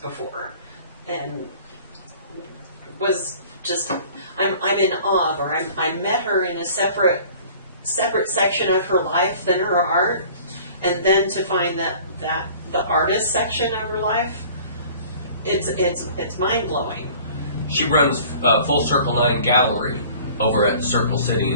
and was just I'm in awe of her. I met her in a separate section of her life than her art, and then to find that the artist section of her life, it's mind blowing. She runs Full Circle 9 Gallery over at Circle City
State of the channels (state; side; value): inverted; both; correlation -0.48